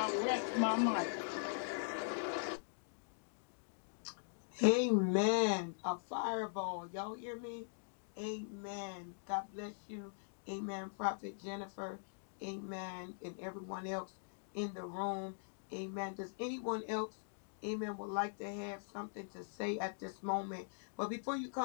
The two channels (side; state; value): right; silent; digital silence